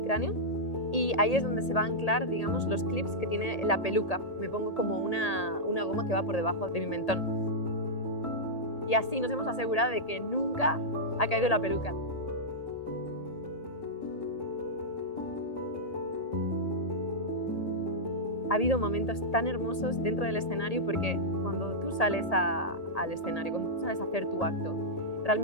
cráneo y ahí es donde se va a anclar, digamos, los clips que tiene la peluca. Me pongo como una goma que va por debajo de mi mentón. Y así nos hemos asegurado de que nunca ha caído la peluca. Ha habido momentos tan hermosos dentro del escenario porque cuando tú sales al escenario, cuando tú sales a hacer tu acto,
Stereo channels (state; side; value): late; right; 1.8 ms